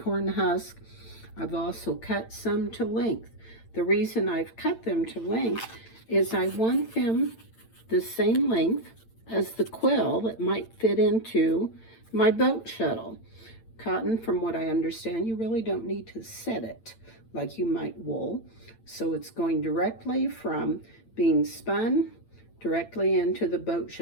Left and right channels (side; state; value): right; late; 8.9 ms